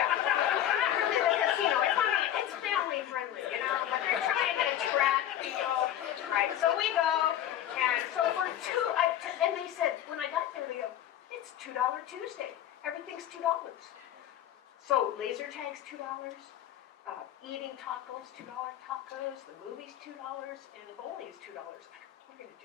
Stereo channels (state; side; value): quieter; right; 11.5 dB